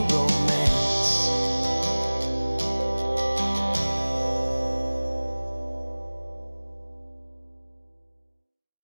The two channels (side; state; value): both; inverted; correlation -1.00